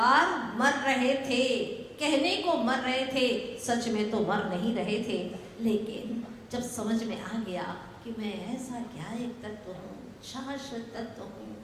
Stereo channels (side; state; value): both; identical; correlation 1.00